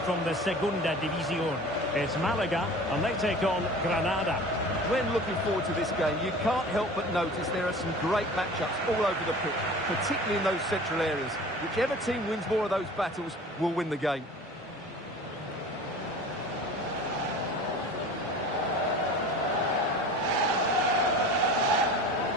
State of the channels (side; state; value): both; normal; correlation 0.40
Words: from the Segunda División. It's Malaga, and they take on Granada. When looking forward to this game, you can't help but notice there are some great matchups all over the pitch, particularly in those central areas. Whichever team wins more of those battles will win the game.